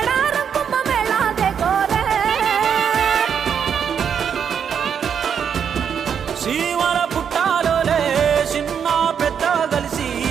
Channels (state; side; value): quieter; left; 7.6 dB